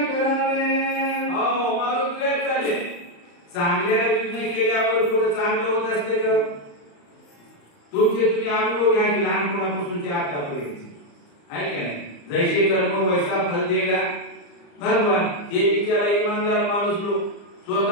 चांगल्या निर्णय केल्यावर पुढे चांगलं होत असते का? तुमचे तुम्ही अनुभव घ्या की लहानपणापासूनचे आतापर्यंत आहे का नाही? जैसे कर्म वैसा फल देगा भगवान. हे बिचारा इमानदार माणूस लोक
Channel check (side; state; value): right; late; 35 ms